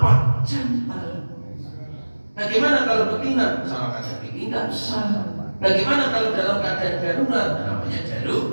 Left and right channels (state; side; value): inverted; both; correlation -1.00